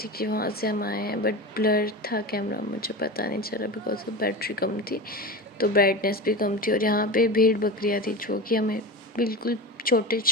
कि वहाँ से हम आए हैं, बट ब्लर था कैमरा, मुझे पता नहीं चला बिकॉज ऑफ बैटरी कम थी, तो ब्राइटनेस भी कम थी। और यहाँ पे भेड़ बकरियाँ थी जो कि हमें बिल्कुल छोटे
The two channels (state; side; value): normal; both; correlation 0.26